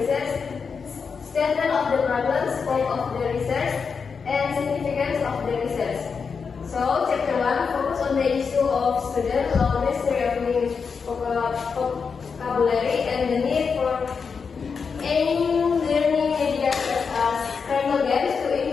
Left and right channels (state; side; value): quieter; right; 5.6 dB